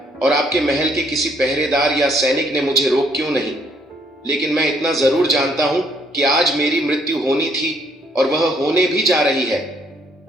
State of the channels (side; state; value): both; normal; correlation 0.67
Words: और आपके महल के किसी पहरेदार या सैनिक ने मुझे रोक क्यों नहीं। लेकिन मैं इतना जरूर जानता हूं कि आज मेरी मृत्यु होनी थी और वह होने भी जा रही है।